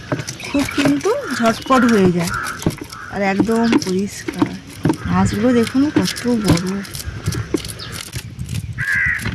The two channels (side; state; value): both; identical; correlation 1.00